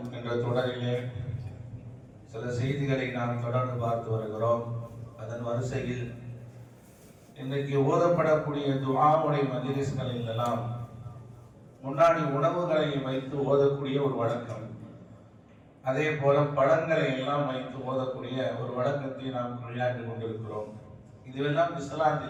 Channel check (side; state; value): both; identical; correlation 1.00